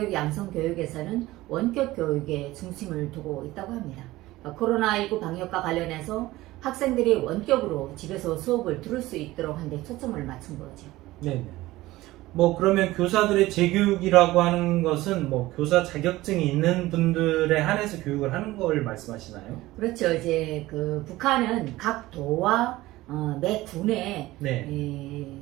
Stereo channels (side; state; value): left; quieter; 17.8 dB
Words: 양성 교육에서는 원격 교육에 중심을 두고 있다고 합니다. 코로나19 방역과 관련해서 학생들이 원격으로 집에서 수업을 들을 수 있도록 하는 데 초점을 맞춘 거죠. 네. 그러면 교사들의 재교육이라고 하는 것은 교사 자격증이 있는 분들에 한해서 교육을 하는 걸 말씀하시나요? 그렇죠. 이제 북한은 각 도와 매 군에 네.